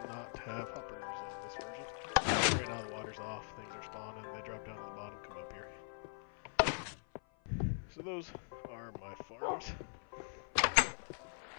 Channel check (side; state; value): right; silent; 50 dB below the other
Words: not have hoppers on this version. Right now the water's off, things are spawning, they drop down to the bottom, come up here. So those are my farms.